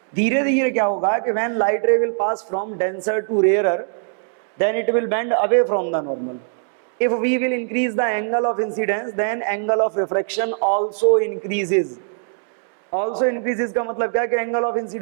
धीरे धीरे क्या होगा कि when light ray will pass from denser to rarer then it will bend away from the normal. If we will increase the angle of incidence, then angle of refraction also increases. Also increases का मतलब क्या है कि angle of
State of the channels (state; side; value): silent; left; digital silence